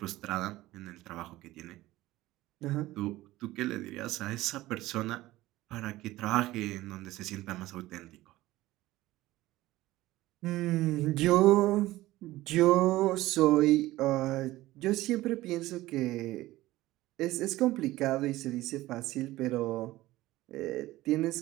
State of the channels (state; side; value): quieter; left; 17.2 dB